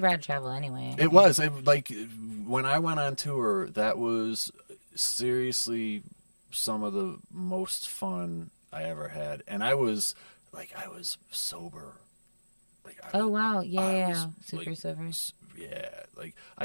rad to travel anyway. It was when I went on tour, that was seriously some of the most fun I ever had, and I was sober. Wow, super sober. You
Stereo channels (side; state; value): both; inverted; correlation -1.00